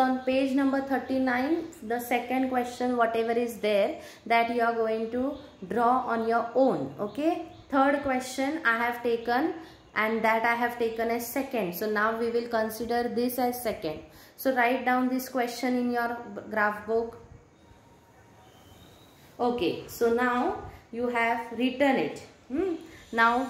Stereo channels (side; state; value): both; identical; correlation 1.00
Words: on page number 39, the second question, whatever is there, that you are going to draw on your own. Okay, third question I have taken, and that I have taken as second. So now we will consider this as second. So write down this question in your graph book. Okay, so now you have written it. Now